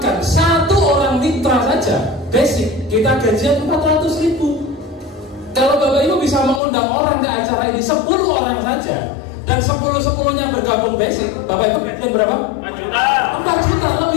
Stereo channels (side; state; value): right; drops out; at 6.6 s